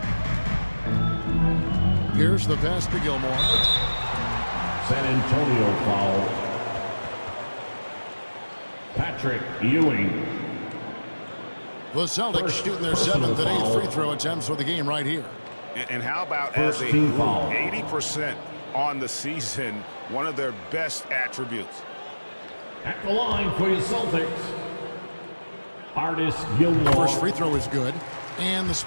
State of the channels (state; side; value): inverted; both; correlation -1.00